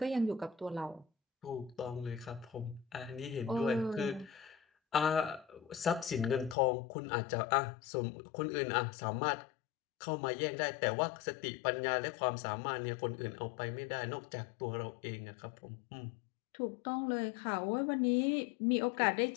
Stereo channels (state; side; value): drops out; right; at 6.6 s